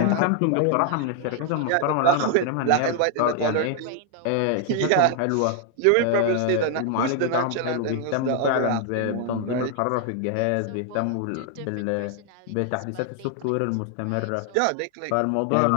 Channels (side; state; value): both; different; correlation 0.00